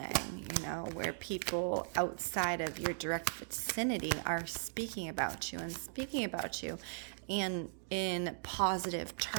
you know, where people outside of your direct vicinity are speaking about you and in positive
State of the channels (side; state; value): left; silent; digital silence